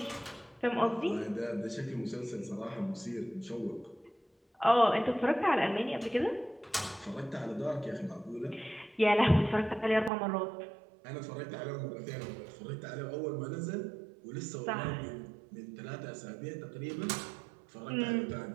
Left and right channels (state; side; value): drops out; left; at 10.1 s